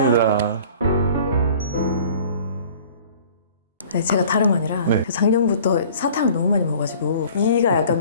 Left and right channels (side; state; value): both; inverted; correlation -0.48